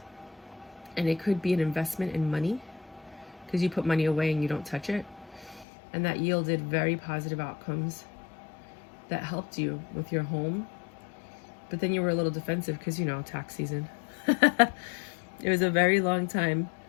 And it could be an investment in money, because you put money away and you don't touch it. And that yielded very positive outcomes that helped you with your home. But then you were a little defensive because, you know, tax season. It was a very long time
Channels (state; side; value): drops out; right; at 5.7 s